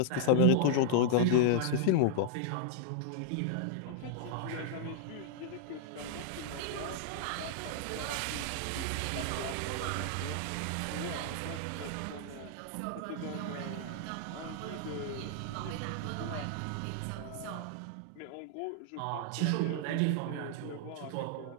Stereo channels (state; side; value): different; both; correlation -0.01